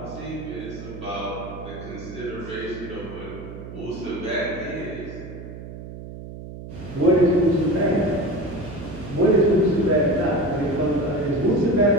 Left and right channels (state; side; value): noise; right; hum, 12 dB below the sound